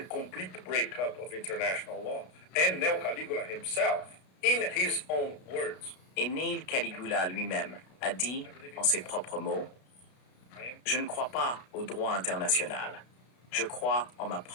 complete breakup of international law. And Neo Caligula himself, in his own words, Et Neil Caligula lui-même a dit, en ses propres mots, « Je ne crois pas au droit international. Je crois en ma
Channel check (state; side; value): late; right; 33 ms